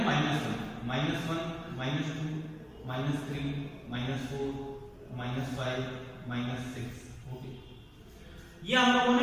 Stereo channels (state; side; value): identical; both; correlation 1.00